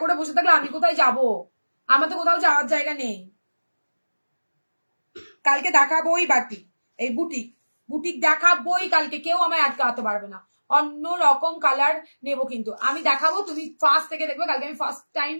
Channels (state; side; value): inverted; both; correlation -1.00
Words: করে বসে থাকলে আমি কোথায় যাব, আমার তো কোথাও যাওয়ার জায়গা নেই। কালকে দেখাবোই বাটি, এই বুটিক বুটিক দেখাবোই কালকে, কেউ আমায় আটকাতে পারবে না। অন্য রকম কালার নেব কিন্তু আমি দেখাবো, তুমি ফার্স্ট থেকে দেখবে কালকে, আমি ফার্স্ট